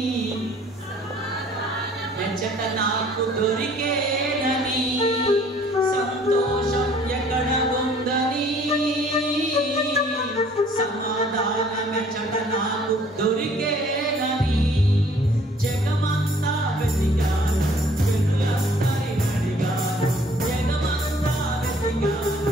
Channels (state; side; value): normal; both; correlation 0.57